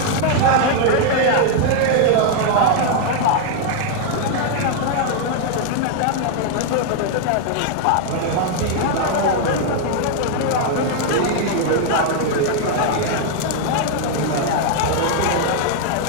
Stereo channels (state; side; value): different; both; correlation 0.00